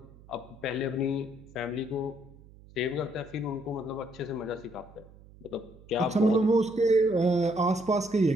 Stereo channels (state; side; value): noise; right; hum, 22 dB below the sound